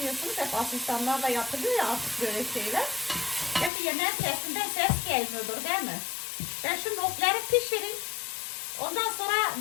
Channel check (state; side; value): drops out; right; at 3.7 s